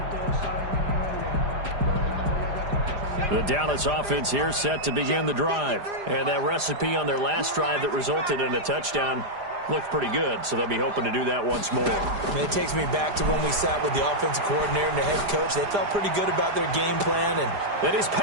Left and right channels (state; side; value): late; left; 4.9 ms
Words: The Dallas offense here set to begin the drive. And that recipe on their last drive that resulted in a touchdown looked pretty good, so they'll be hoping to do that once more. It takes me back to when we sat with the offensive coordinator and the head coach. They felt pretty good about their game plan. And his